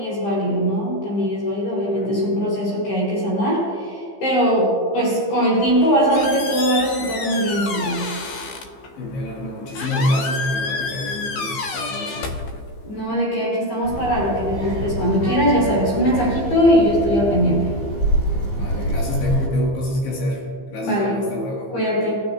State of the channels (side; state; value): right; late; 15 ms